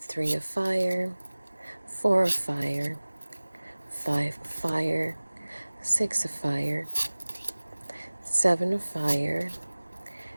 of Fire, 4 of Fire, 5 of Fire, 6 of Fire, 7 of Fire,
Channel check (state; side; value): inverted; both; correlation -1.00